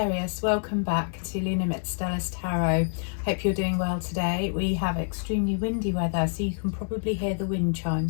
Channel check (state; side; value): silent; right; digital silence